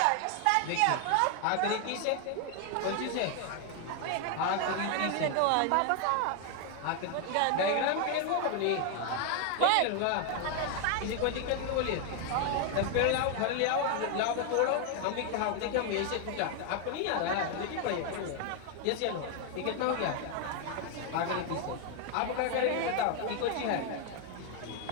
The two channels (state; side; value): different; both; correlation 0.00